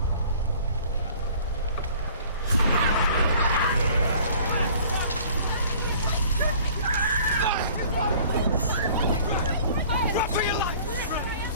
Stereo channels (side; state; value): both; inverted; correlation -0.51